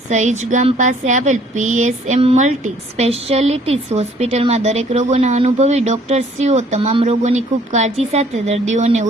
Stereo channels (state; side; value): normal; both; correlation 0.59